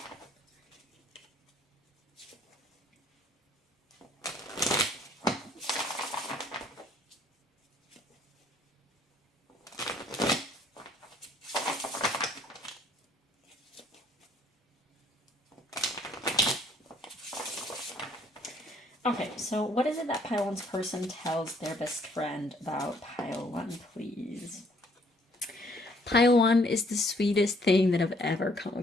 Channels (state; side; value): normal; both; correlation 0.63